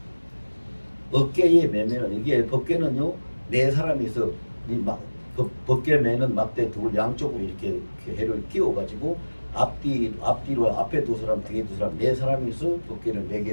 어깨에 메면 이게 법궤는요 네 사람이서 법궤 매는 막대 둘 양쪽으로 이렇게 해를 끼워 가지고 앞뒤로 앞에 두 사람 뒤에 두 사람 네 사람이서 법궤를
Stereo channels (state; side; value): inverted; both; correlation -1.00